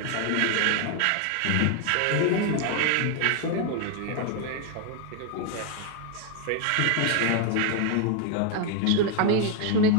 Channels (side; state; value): both; different; correlation 0.01